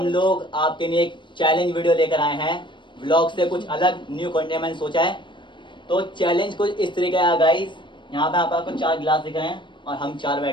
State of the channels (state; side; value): late; right; 0.23 ms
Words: लोग आपके लिए एक चैलेंज वीडियो लेकर आए हैं। व्लॉग से कुछ अलग न्यू कंटेंट मैंने सोचा है। तो चैलेंज कुछ इस तरीके का है गाइस। यहाँ पे आपको 4 गिलास दिख रहे हैं और हम 4